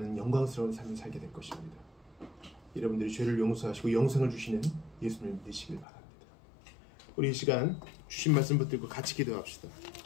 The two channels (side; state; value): right; drops out; at 5.9 s